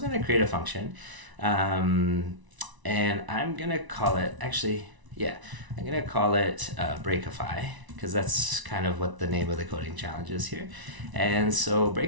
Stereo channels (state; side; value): late; left; 1.0 ms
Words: going to create a function. And I'm going to call it, I'm going to call it Breakify, because that's kind of what the name of the coding challenge is here. And so